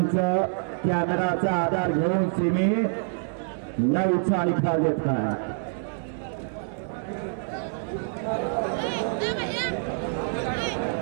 कॅमेराचा आधार घेऊन सिमी 9चा निकाल देत आहे।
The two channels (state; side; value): silent; left; 61 dB below the other